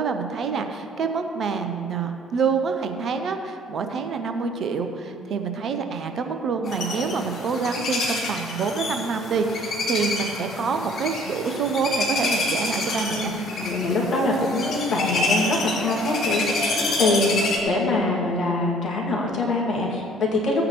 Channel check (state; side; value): normal; both; correlation 0.54